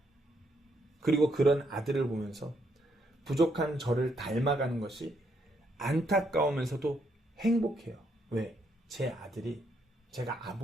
그리고 그런 아들을 보면서 부족한 저를 닮아가는 것이 안타까우면서도 행복해요. 왜? 제 아들이 제가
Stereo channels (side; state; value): both; normal; correlation 0.75